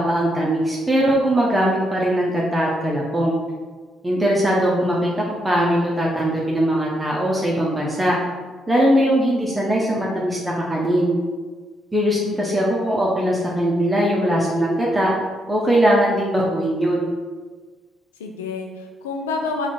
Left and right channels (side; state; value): both; normal; correlation 0.79